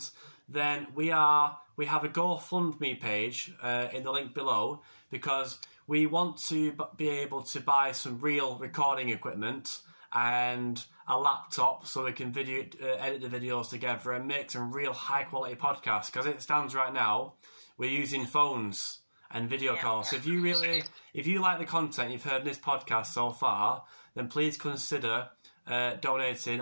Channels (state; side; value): inverted; both; correlation -1.00